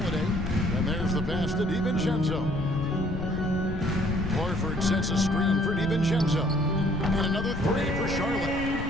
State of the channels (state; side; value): noise; left; rumble, 7 dB below the sound